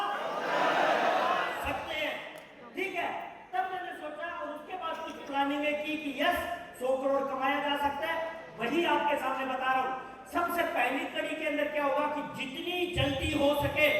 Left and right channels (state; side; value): identical; both; correlation 1.00